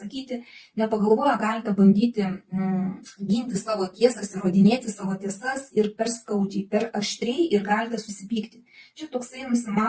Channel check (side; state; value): both; identical; correlation 1.00